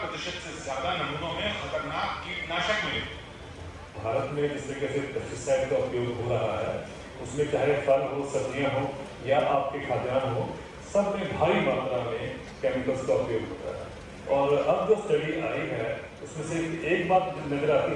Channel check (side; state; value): both; identical; correlation 1.00